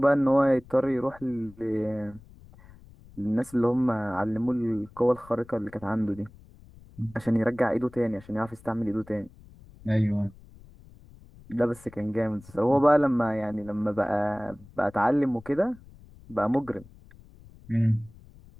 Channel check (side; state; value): left; noise; rumble, 22 dB below the sound